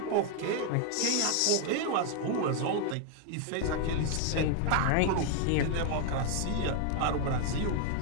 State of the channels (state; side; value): different; both; correlation 0.00